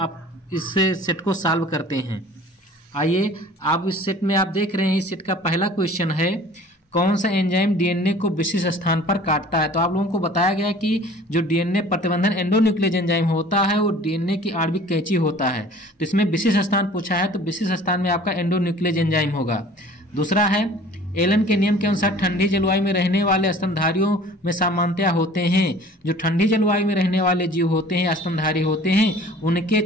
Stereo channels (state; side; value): normal; both; correlation 0.48